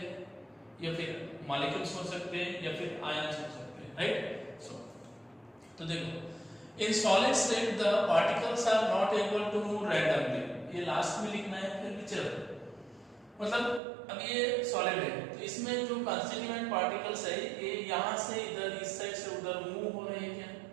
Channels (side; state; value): left; drops out; at 13.8 s